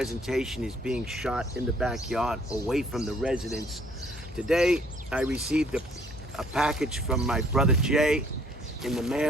is being shot in the backyard away from the residence. Today, I received a package from my brother Jay in the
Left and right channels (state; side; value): normal; both; correlation 0.61